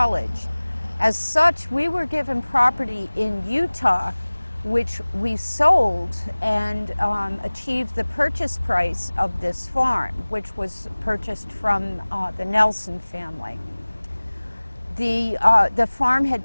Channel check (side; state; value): both; inverted; correlation -1.00